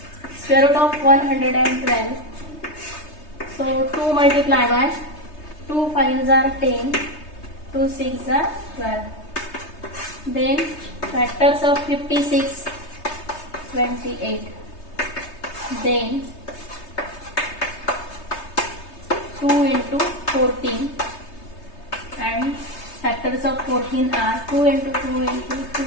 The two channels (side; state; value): right; late; 3.3 ms